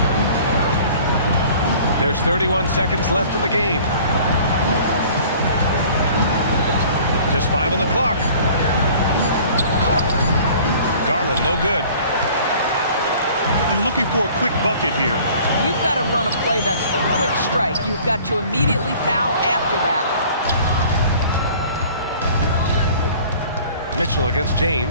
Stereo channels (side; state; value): both; inverted; correlation -0.49